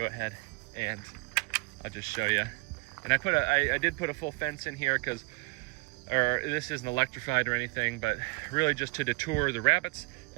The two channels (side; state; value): left; quieter; 27.0 dB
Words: ahead and I'll just show you. And I did put a full fence in here because, or this isn't electrified or anything, but really just to deter the rabbits,